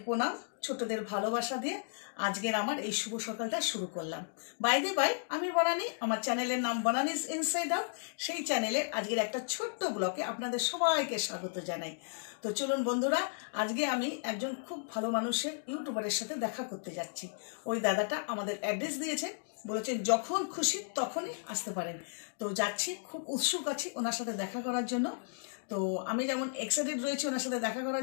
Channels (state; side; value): silent; right; digital silence